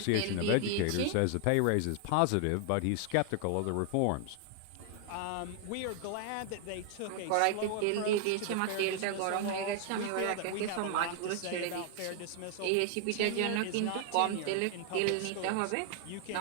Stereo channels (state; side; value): different; both; correlation 0.00